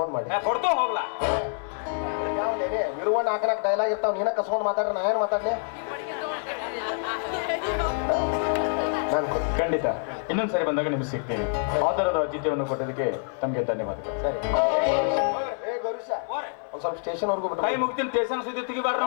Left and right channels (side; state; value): right; silent; 59 dB below the other